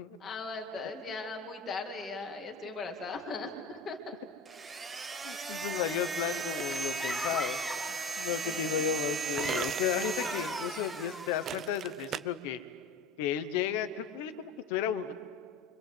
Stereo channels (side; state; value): right; quieter; 3.3 dB